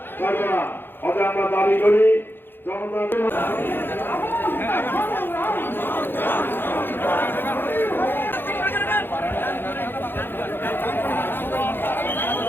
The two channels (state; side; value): late; right; 0.10 ms